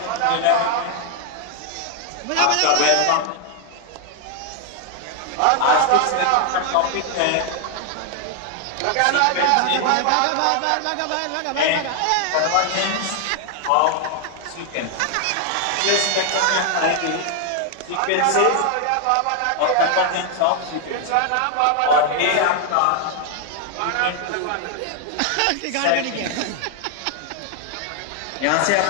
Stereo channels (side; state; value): both; different; correlation 0.00